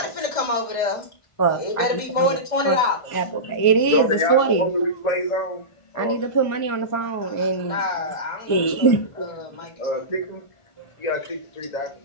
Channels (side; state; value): right; late; 1.4 ms